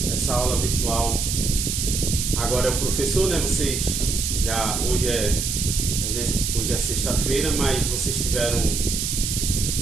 essa aula virtual, agora é o professor, né? Vocês já hoje é sexta-feira, mas vocês tiveram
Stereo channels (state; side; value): noise; right; hiss, 1 dB below the sound